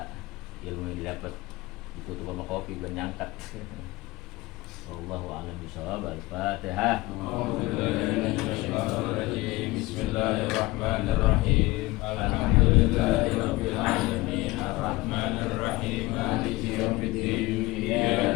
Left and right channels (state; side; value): quieter; right; 20.5 dB